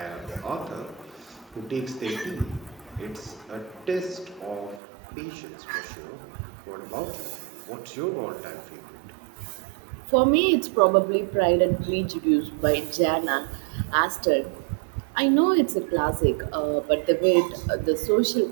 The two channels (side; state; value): left; drops out; at 4.8 s